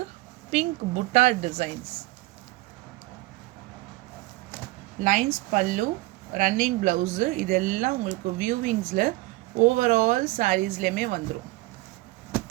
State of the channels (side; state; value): left; quieter; 20.9 dB